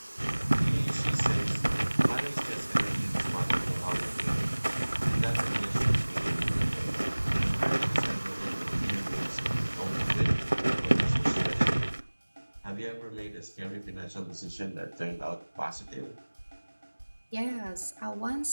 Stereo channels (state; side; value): inverted; both; correlation -1.00